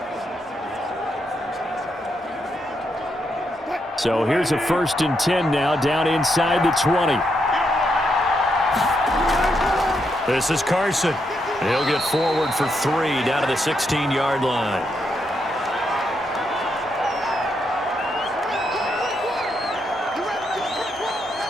So here's a 1st and 10 now, down inside the 20. This is Carson. He'll get forward for 3 down to the 16-yard line.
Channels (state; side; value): normal; both; correlation 0.80